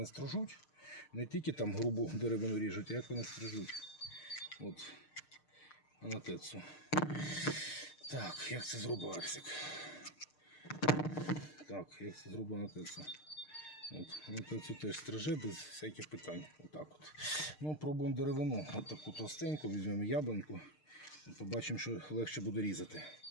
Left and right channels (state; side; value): late; right; 6.6 ms